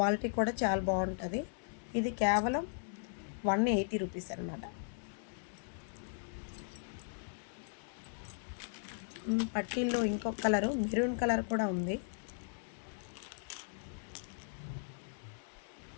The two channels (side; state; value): right; silent; digital silence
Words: కూడా చాలా బాగుంటుంది. ఇది కేవలం 180 రూపీస్ అనమాట. పట్టీల్లో ఇంకొక కలరు మెరూన్ కలర్ కూడా ఉంది.